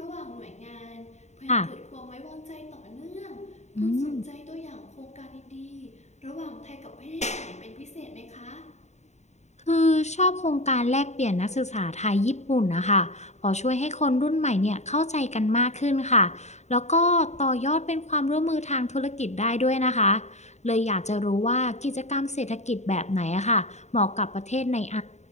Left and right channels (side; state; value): right; late; 0.33 ms